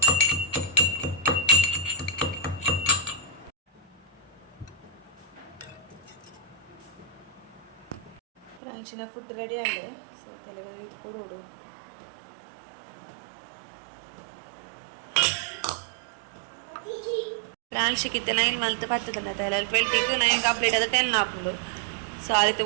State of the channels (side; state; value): left; drops out; at 8.6 s